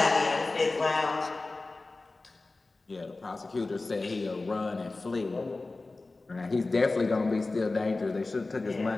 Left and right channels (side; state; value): right; quieter; 3.3 dB